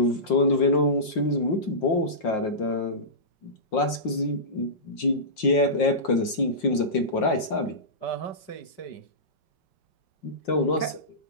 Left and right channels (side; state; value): right; late; 5.6 ms